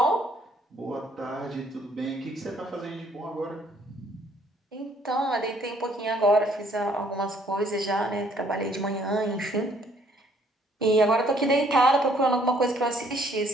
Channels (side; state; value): both; normal; correlation 0.64